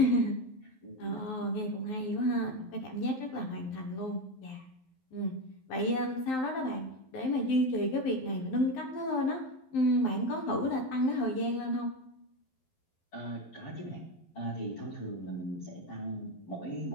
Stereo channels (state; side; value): late; right; 12 ms